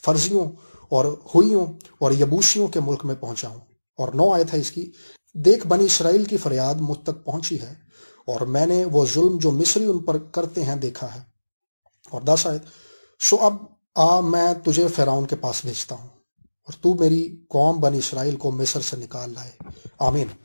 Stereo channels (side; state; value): both; inverted; correlation -1.00